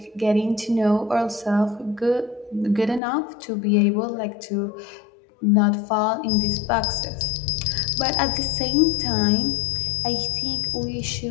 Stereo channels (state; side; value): drops out; right; at 3.0 s